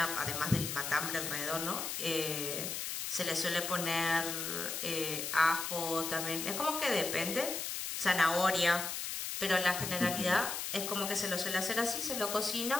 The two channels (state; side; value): noise; left; hiss, 4 dB below the sound